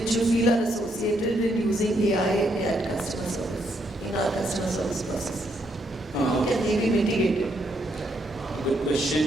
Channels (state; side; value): normal; both; correlation 0.75